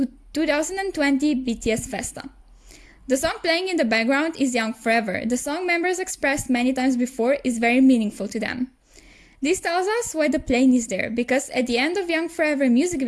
2020 BTS Festa." The song playing in the background is Young Forever. The song members expressed many times before is very meaningful to them. This tells us why the plane is there, because at the end of Young Forever music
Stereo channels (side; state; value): both; identical; correlation 1.00